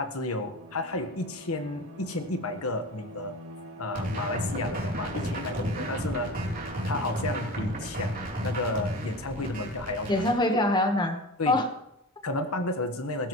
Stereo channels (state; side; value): normal; both; correlation 0.32